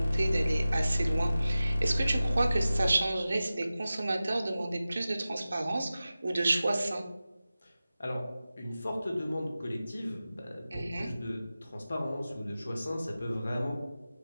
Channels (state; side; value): inverted; both; correlation -0.95